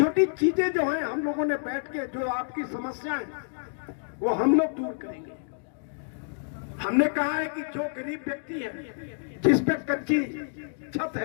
चीजें जो हैं, हम लोगों ने बैठ के जो आपकी समस्याएं, वो हम लोग दूर करेंगे। हमने कहा है कि जो गरीब व्यक्ति है, जिस पे कच्ची छत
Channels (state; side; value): silent; right; digital silence